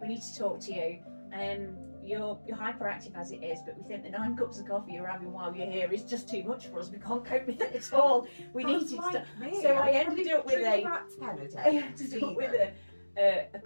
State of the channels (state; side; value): inverted; both; correlation -1.00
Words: We need to talk to you. You're hyperactive as it is, but we think the 9 cups of coffee you're having while you're here is just too much for us. We can't cope with it at all. We need to stop. So I ended up with a